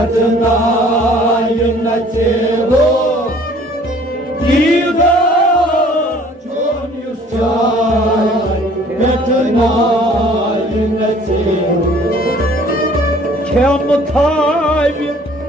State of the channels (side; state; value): both; normal; correlation 0.54